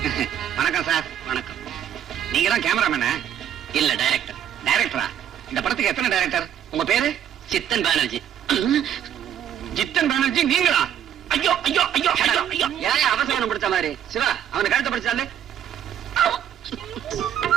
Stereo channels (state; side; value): quieter; left; 10.0 dB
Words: வணக்கம் சார். வணக்கம். நீங்க தான் கேமராமேனா? இல்ல, டைரக்டர். டைரக்டரா? இந்த படத்துக்கு எத்தனை டைரக்டர்? உங்க பேரு? சித்தன் பானர்ஜி. ஜித்தன் பானர்ஜி நீங்களா? ஐயோ ஐயோ ஐயோ ஐயோ, ஏன் அவசரம் பிடிச்ச மாதிரி? சிவா, அவனை கழுத்தை பிடிச்சாலே.